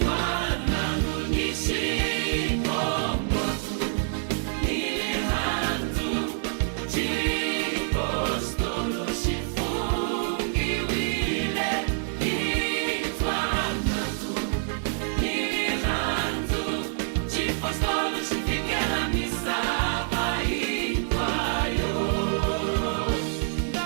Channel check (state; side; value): silent; left; 60 dB below the other